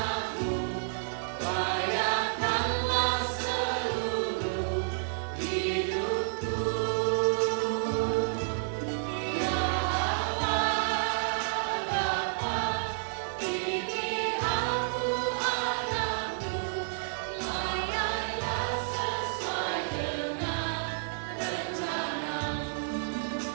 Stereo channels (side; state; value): left; silent; digital silence